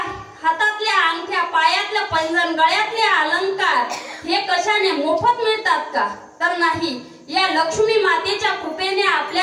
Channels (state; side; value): identical; both; correlation 1.00